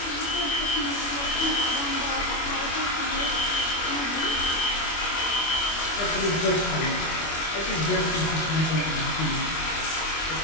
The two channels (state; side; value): late; right; 25 ms